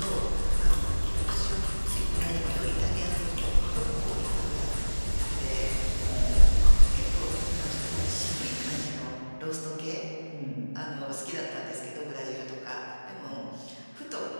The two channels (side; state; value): both; inverted; correlation -1.00